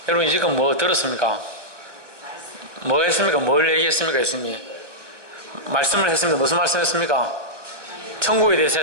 여러분 이제껏 뭐 들었습니까? 뭐 했습니까? 뭘 얘기했습니까? 예수님이 말씀을 했습니다. 무슨 말씀 했습니까? 천국에 대해서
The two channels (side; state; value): left; late; 1.1 ms